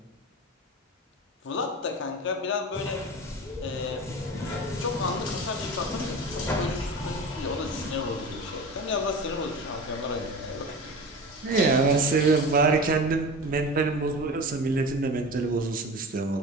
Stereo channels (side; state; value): both; normal; correlation 0.31